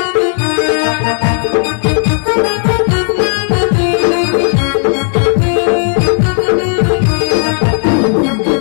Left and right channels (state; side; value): silent; right; 58 dB below the other